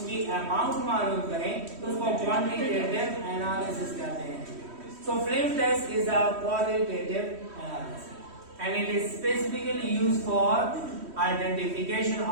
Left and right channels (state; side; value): late; left; 3.1 ms